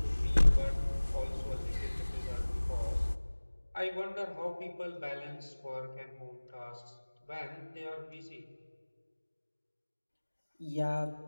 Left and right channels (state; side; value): inverted; both; correlation -1.00